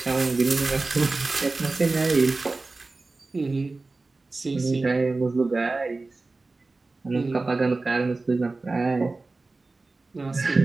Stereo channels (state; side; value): quieter; left; 3.5 dB